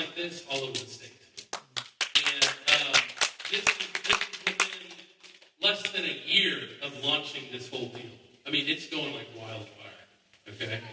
this all over the state. And this is within less than a year of launching this whole deal. I mean, it's going like wildfire, okay?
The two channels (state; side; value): identical; both; correlation 1.00